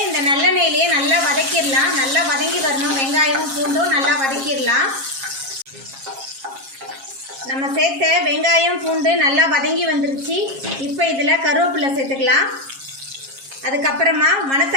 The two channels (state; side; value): late; left; 7.4 ms